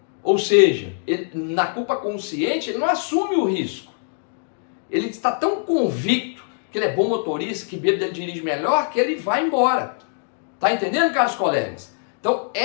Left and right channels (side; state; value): right; silent; digital silence